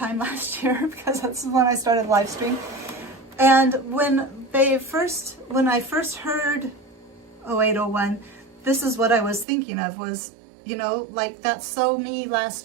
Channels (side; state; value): left; drops out; at 9.5 s